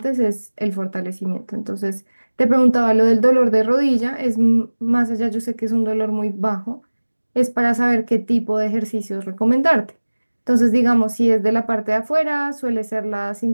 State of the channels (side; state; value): both; inverted; correlation -1.00